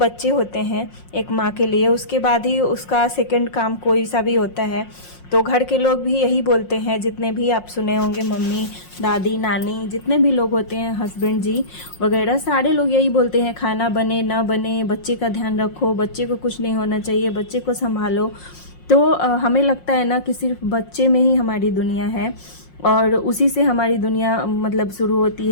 होते हैं एक माँ के लिए। उसके बाद ही उसका सेकंड काम कोई सा भी होता है। तो घर के लोग भी यही बोलते हैं, जितने भी आप सुने होंगे, मम्मी, दादी, नानी, जितने भी लोग होते हैं, हस्बैंड जी वगैरह, सारे लोग यही बोलते हैं, खाना बने ना बने, बच्चे का ध्यान रखो, बच्चे को कुछ नहीं होना चाहिए, बच्चे को संभालो। तो हमें लगता है ना कि सिर्फ बच्चे में ही हमारी दुनिया है, और उसी से हमारी दुनिया मतलब शुरू होती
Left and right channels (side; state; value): right; late; 5.6 ms